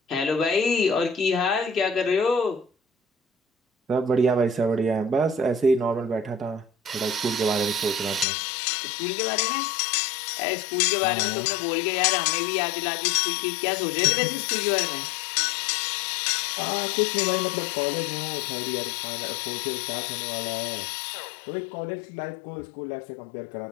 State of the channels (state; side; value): drops out; right; at 8.2 s